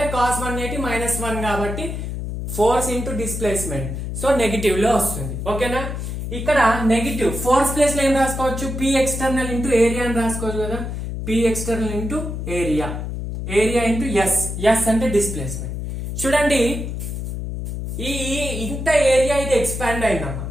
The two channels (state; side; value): noise; left; hum, 5 dB below the sound